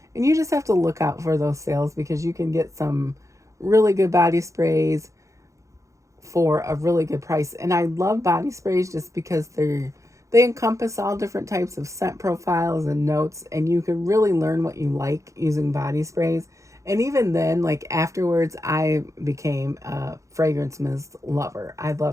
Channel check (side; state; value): left; late; 0.15 ms